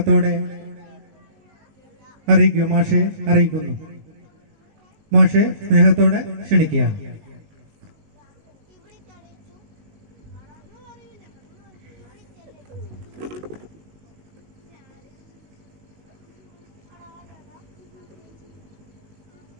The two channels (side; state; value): left; late; 19 ms